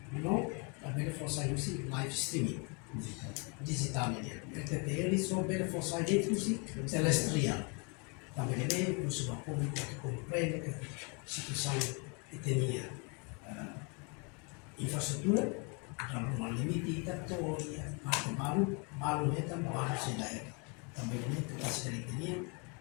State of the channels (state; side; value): quieter; right; 33.9 dB